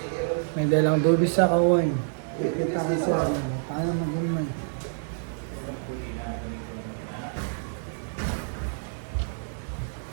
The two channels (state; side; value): silent; left; 60 dB below the other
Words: May dalang dubis sa kawain. Kita ko sa ano, paano mag-umay.